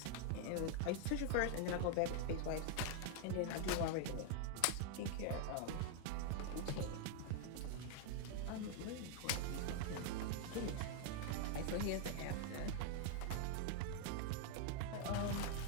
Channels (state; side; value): different; both; correlation 0.01